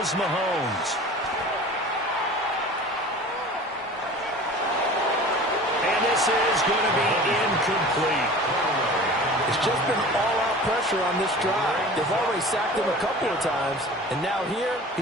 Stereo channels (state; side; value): normal; both; correlation 0.40